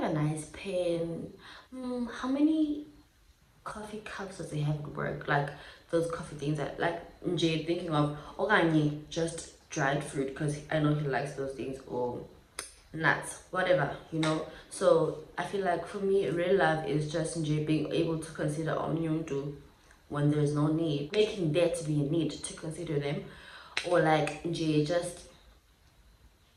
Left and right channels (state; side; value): identical; both; correlation 1.00